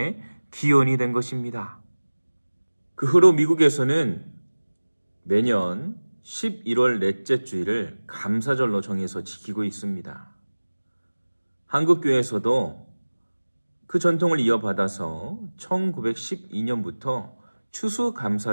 기원이 된 것입니다. 그 후로 미국에서는 매년 11월 넷째 주일을 감사절로 정해서 지키고 있습니다. 한국교회에서도 그 전통을 이어받아서 1912년부터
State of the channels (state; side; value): inverted; both; correlation -1.00